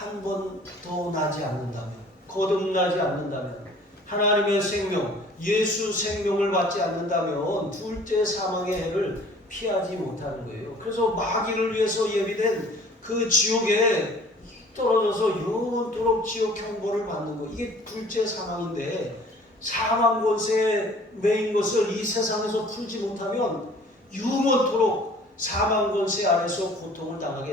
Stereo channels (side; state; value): both; normal; correlation 0.51